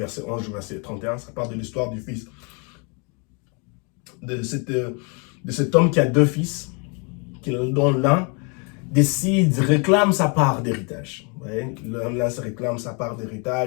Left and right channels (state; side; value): quieter; right; 34.6 dB